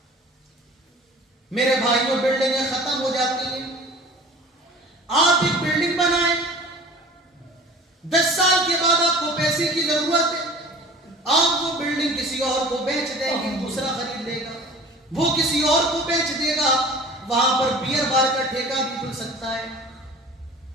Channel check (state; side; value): normal; both; correlation 0.43